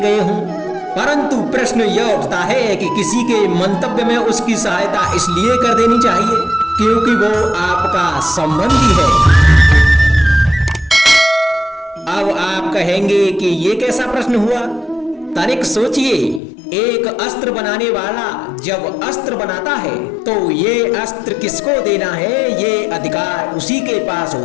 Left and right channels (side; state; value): right; drops out; at 16.4 s